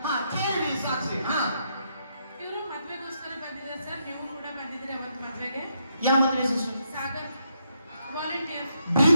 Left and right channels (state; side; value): inverted; both; correlation -0.78